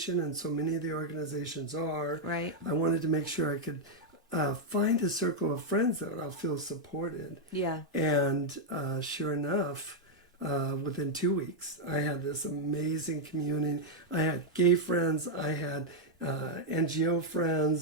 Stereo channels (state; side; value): normal; both; correlation -0.01